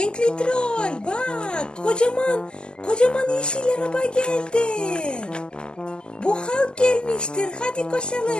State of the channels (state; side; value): late; right; 0.054 ms